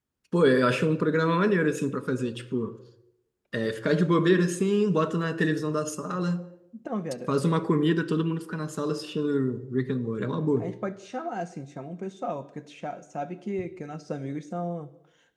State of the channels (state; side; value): identical; both; correlation 1.00